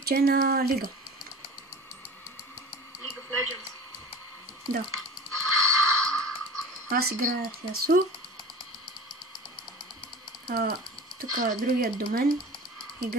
на Лига. League of Legends. Да. Аз играя с Ясу. Тук другият до мен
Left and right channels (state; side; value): normal; both; correlation 0.38